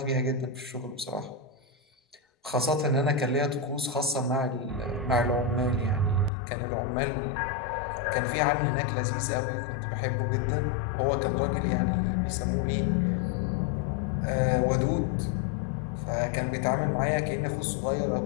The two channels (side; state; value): right; drops out; at 6.3 s